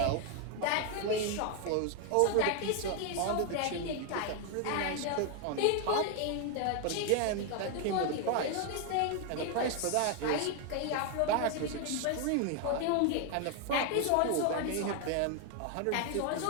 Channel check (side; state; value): both; different; correlation 0.00